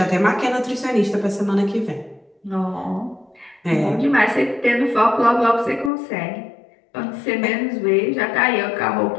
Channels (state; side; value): drops out; right; at 5.9 s